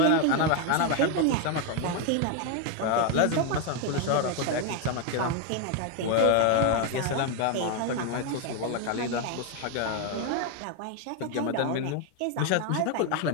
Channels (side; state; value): both; different; correlation 0.01